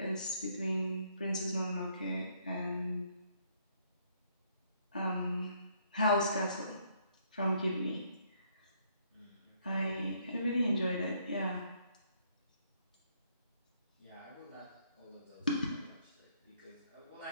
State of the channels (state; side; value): inverted; both; correlation -0.68